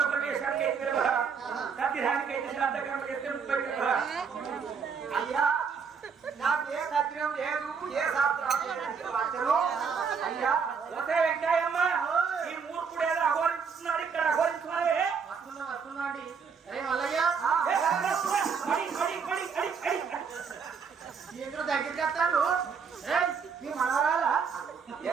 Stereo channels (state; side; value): quieter; left; 6.1 dB